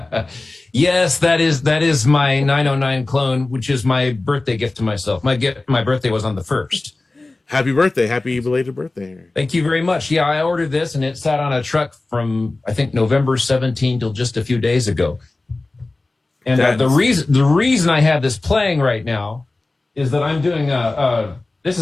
Yes, that is my 909 clone, which is my birthday gift to myself. My birthday was on the 1st. Happy birthday. Happy belated birthday. Thank you very much. Yeah, I ordered this and it sat on a truck from, I think, November 17 till just a few days ago. And the reason I have this playing right now is that I'm doing this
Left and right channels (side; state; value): right; quieter; 3.1 dB